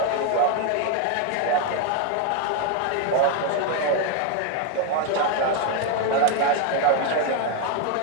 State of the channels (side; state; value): both; different; correlation 0.01